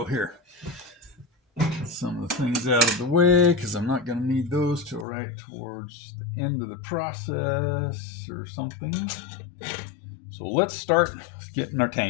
here. Get some of the things out of the way because I'm not going to need those till right towards the end of the process or something. So let's start getting our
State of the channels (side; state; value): right; drops out; at 5.1 s